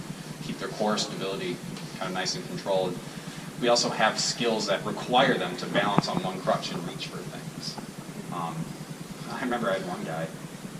keep their core stability kind of nice and controlled. We also have skills that require them to balance on one crutch and reach for things. I remember I had one guy,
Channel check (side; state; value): both; identical; correlation 1.00